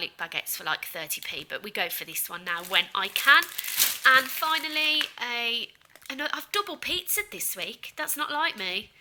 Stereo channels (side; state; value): both; identical; correlation 1.00